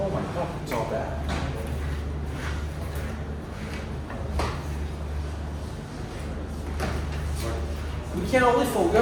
my God, it's all bad. We can only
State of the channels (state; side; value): identical; both; correlation 1.00